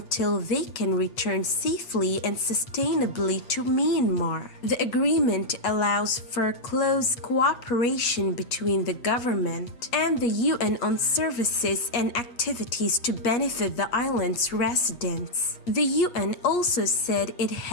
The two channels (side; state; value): right; late; 8.3 ms